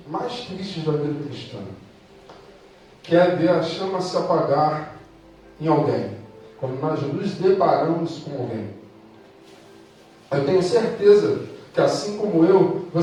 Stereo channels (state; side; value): identical; both; correlation 1.00